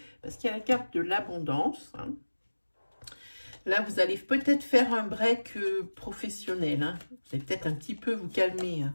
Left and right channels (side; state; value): both; inverted; correlation -1.00